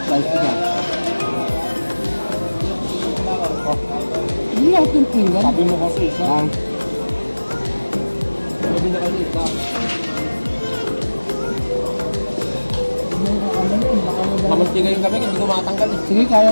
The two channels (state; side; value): inverted; both; correlation -1.00